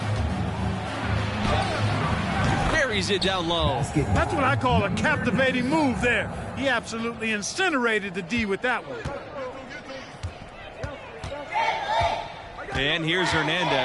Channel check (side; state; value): both; identical; correlation 1.00